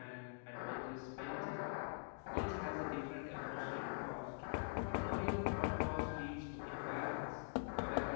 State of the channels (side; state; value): right; silent; digital silence